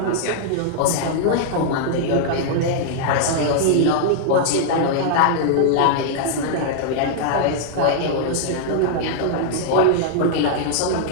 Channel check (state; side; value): different; both; correlation -0.01